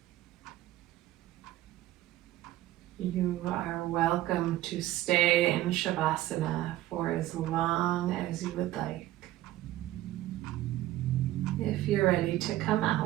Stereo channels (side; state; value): left; quieter; 15.1 dB